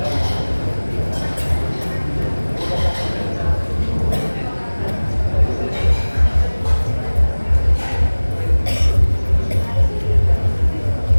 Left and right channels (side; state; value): both; inverted; correlation -1.00